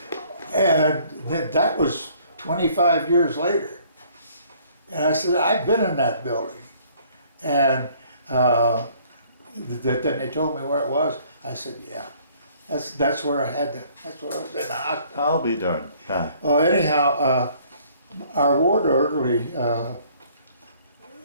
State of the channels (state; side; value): inverted; both; correlation -0.59